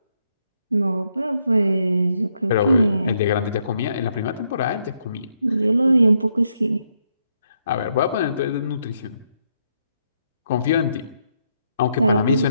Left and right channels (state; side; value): inverted; both; correlation -0.77